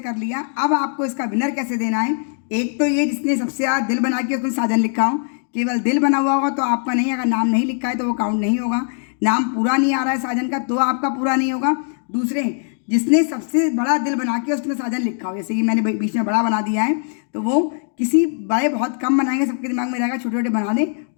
लिया, अब आपको इसका विनर कैसे देना है। एक तो ये जिसने सबसे ज़्यादा दिल बना के उसमें साजन लिखा हो, केवल दिल बना हुआ होगा तो आपका नहीं, अगर नाम नहीं लिखा है तो वो काउंट नहीं होगा। नाम पूरा नहीं आ रहा है साजन का तो आपका पूरा नहीं होगा। दूसरे जिसने सबसे बड़ा दिल बना के उसमें साजन लिखा हो, जैसे कि मैंने बीच में बड़ा बना दिया है, तो वो किसी बड़े बहुत कम बनाएंगे, सबके दिमाग में रहेगा, छोटे छोटे बना दें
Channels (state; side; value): silent; right; 60 dB below the other